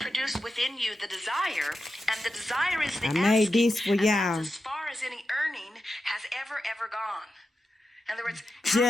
within you the desire, and the desire is the I asking. made this for and y'all. that's as far as any earning has ever gone. In other words, Just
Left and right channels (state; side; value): normal; both; correlation 0.90